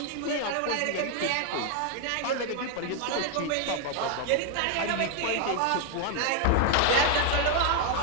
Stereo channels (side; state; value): both; different; correlation 0.00